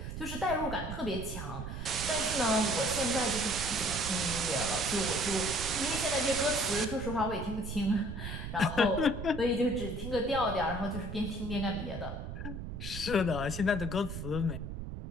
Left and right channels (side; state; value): right; noise; rumble, 7 dB below the sound